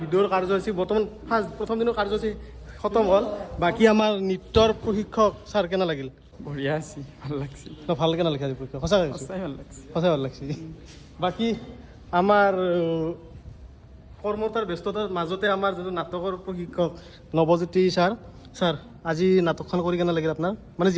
কাৰ্যসূচী বৰ্তমান প্ৰথম দিনৰ কাৰ্যসূচী খতম হ'ল। বাকী আমাৰ নৃত্যৰ প্ৰশিক্ষক ছাৰ কেনে লাগিল? বঢ়িয়া আছে, ভাল লাগছে। ভাল কেনে লাগিছে আজি প্ৰশিক্ষক? সঁচাকৈ সঁচাই ভাল লাগছে। সঁচাই ভাল লাগছে। বাকী আমাৰ কৰ্মতাৰ ব্যস্ততাৰ মাজতে আমাৰ যিটো নাটকৰ প্ৰশিক্ষক নৱজ্যোতি ছাৰ আজি নাটকখন কৰি কেনে লাগিল আপোনাৰ? মানে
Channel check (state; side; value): identical; both; correlation 1.00